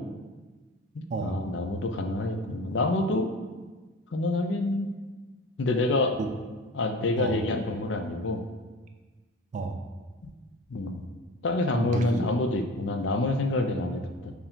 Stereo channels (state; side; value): normal; both; correlation 0.37